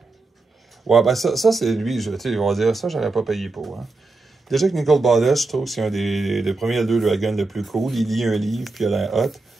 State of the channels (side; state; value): left; quieter; 3.4 dB